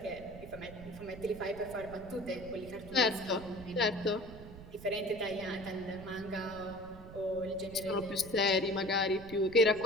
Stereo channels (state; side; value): noise; right; rumble, 15 dB below the sound